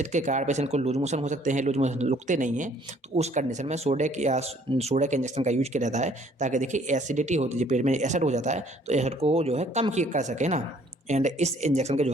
के कारण पेशेंट को लूज मोशन हो सकते हैं, लूज मोशन रुकते नहीं हैं, तो उस कंडीशन में सोडेक इंजेक्शन का यूज किया जाता है ताकि देखिए एसिडिटी होती है, पेट में एसिड हो जाता है तो एसिड को जो है कम कर सके ना। एंड इस इंजेक्शन के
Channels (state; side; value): normal; both; correlation 0.60